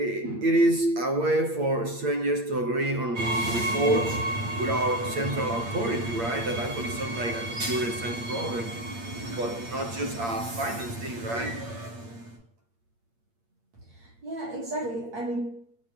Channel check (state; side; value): late; left; 8.7 ms